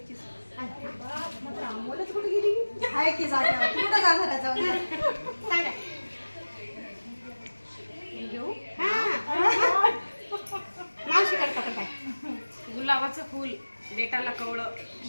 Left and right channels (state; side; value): inverted; both; correlation -1.00